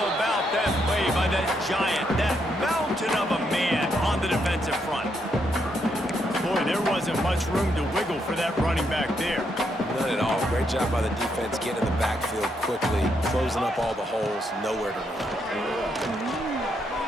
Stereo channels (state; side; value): normal; both; correlation 0.77